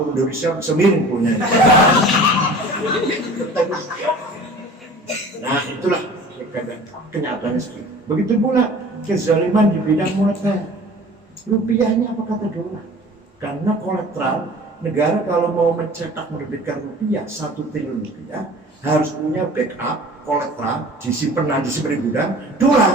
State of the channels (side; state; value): both; normal; correlation 0.44